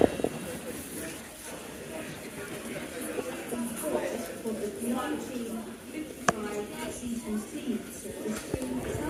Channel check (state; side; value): identical; both; correlation 1.00